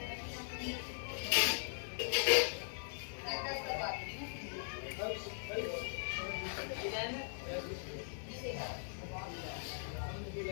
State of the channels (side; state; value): right; silent; digital silence